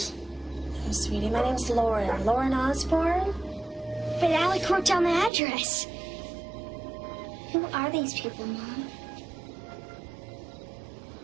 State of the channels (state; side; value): drops out; left; at 5.3 s